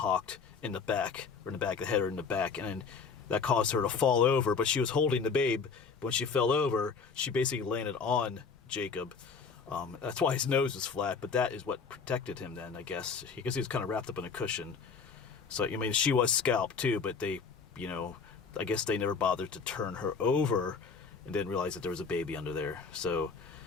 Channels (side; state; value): right; quieter; 5.4 dB